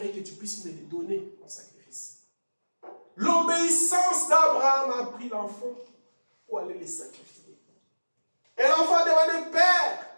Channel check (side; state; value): both; inverted; correlation -1.00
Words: que tu puisses me les donner en sacrifice. L'obéissance d'Abraham a pris l'enfant pour aller les sacrifier. Et l'enfant demandait, Père,